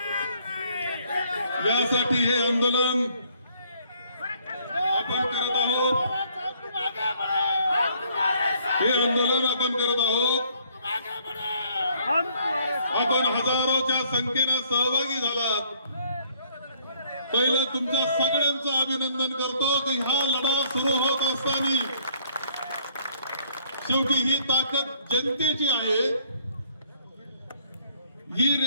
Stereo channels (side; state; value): both; inverted; correlation -0.63